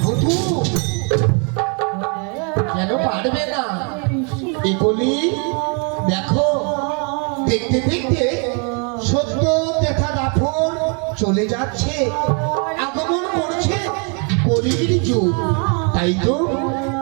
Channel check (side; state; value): left; quieter; 37.3 dB